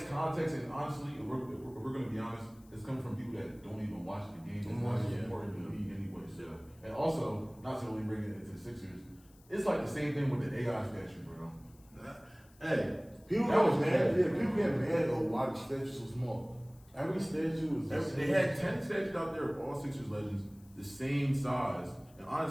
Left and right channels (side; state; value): left; noise; hiss, 28 dB below the sound